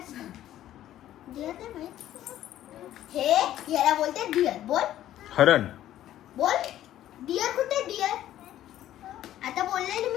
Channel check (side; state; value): right; quieter; 12.7 dB